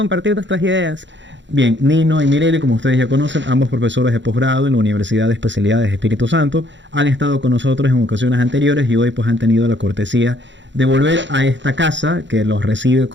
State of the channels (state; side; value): late; left; 0.53 ms